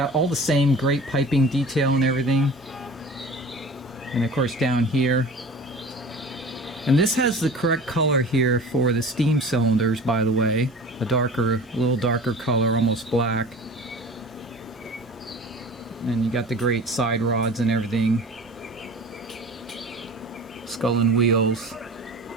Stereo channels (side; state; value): both; normal; correlation 0.40